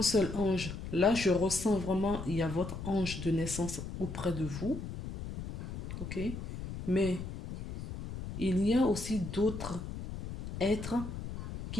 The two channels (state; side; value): noise; left; rumble, 8 dB below the sound